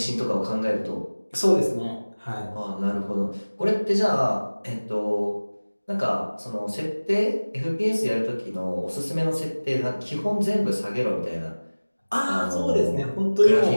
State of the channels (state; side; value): inverted; both; correlation -1.00